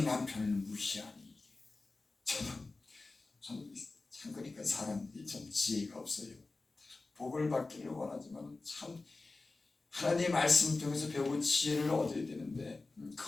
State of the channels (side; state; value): right; quieter; 3.5 dB